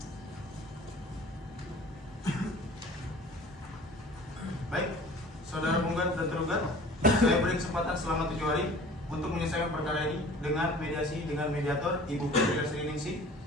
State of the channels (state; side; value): normal; both; correlation 0.46